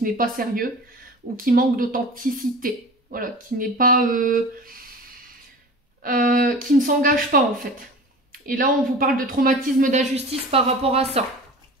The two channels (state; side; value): normal; both; correlation 0.37